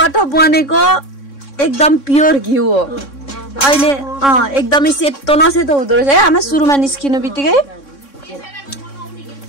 बनेको एकदम प्योर घिउ हो अहिले एकदमै सेतो नसेतो हुँदो रहेछ है आमा सुरुमा निस्किनु बित्तिकै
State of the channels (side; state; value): right; late; 3.6 ms